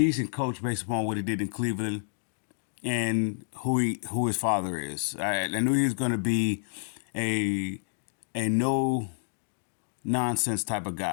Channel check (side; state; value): right; silent; digital silence